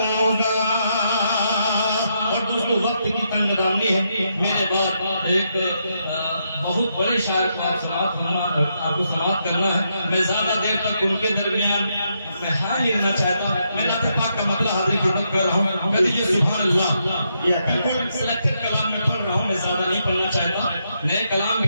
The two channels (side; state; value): both; inverted; correlation -0.80